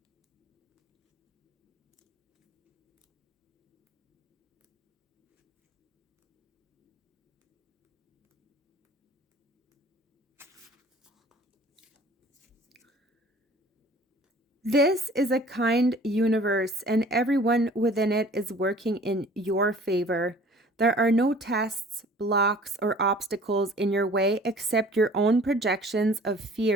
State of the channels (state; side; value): normal; both; correlation 0.50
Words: This is a kind universe, and everyone within it is working in your favor. There are no tests, blocks, or obstacles in your way except your own projections of